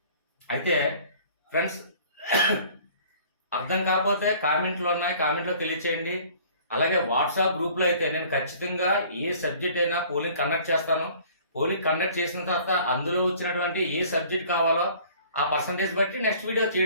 అయితే ఫ్రెండ్స్ అర్థం కాకపోతే కామెంట్లో ఉన్నాయి, కామెంట్లో తెలియచేయండి. అలాగే వాట్సాప్ గ్రూప్లో అయితే నేను ఖచ్చితంగా ఏ సబ్జెక్ట్ అయినా పోలింగ్ కండక్ట్ చేస్తాను. పోలింగ్ కండక్ట్ చేసిన తర్వాత అందులో వచ్చినటువంటి ఏ సబ్జెక్ట్ కావాలో ఆ పర్సంటేజ్ బట్టి నెక్స్ట్ వీడియో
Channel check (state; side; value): inverted; both; correlation -0.52